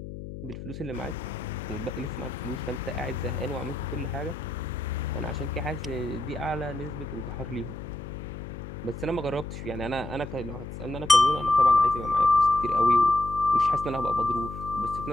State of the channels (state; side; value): noise; left; hum, 10 dB below the sound